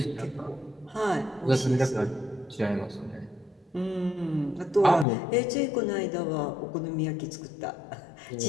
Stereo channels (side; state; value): right; drops out; at 5.1 s